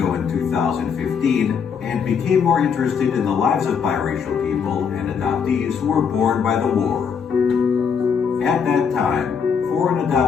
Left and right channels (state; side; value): quieter; right; 6.6 dB